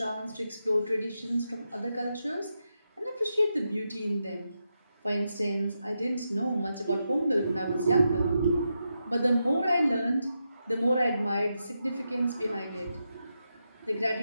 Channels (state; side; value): inverted; both; correlation -0.86